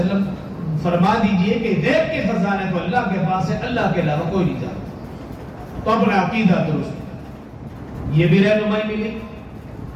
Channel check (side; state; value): both; identical; correlation 1.00